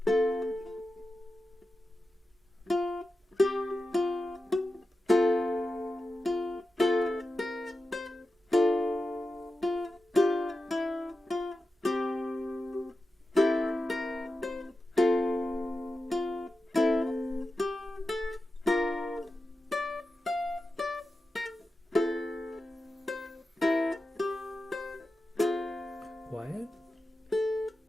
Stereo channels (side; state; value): both; normal; correlation 0.92